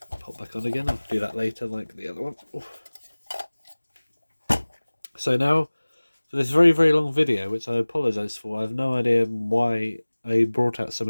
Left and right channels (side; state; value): both; inverted; correlation -1.00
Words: pop back on again. I'll do that later like the other one. Oof. So now for this very, very long video, which I apologise for. I have no idea why I brought out so